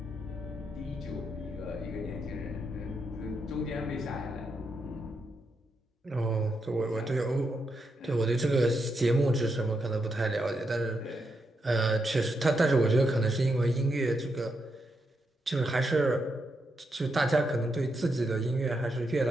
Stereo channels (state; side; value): normal; both; correlation 0.82